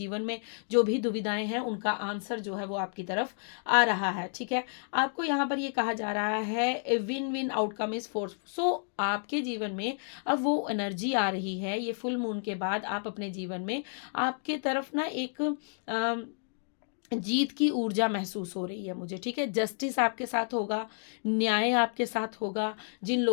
में जो भी दुविधाएं हैं उनका आंसर जो है वो आपकी तरफ आ रहा है, ठीक है। आपको यहाँ पर ये कहा जा रहा है win win outcome is force. So आपके जीवन में अब वो एनर्जी आ रही है, ये फुल मून के बाद आप अपने जीवन में आपके तरफ ना एक जीत की ऊर्जा महसूस हो रही है मुझे, ठीक है। जस्टिस आपके साथ होगा, न्याय आपके साथ होगा। जिन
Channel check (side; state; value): right; silent; 57 dB below the other